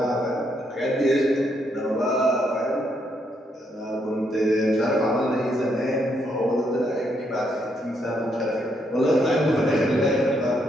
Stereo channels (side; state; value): both; normal; correlation 0.75